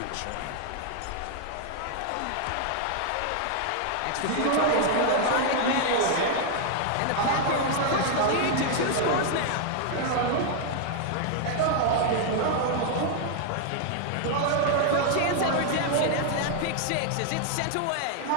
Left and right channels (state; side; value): different; both; correlation 0.00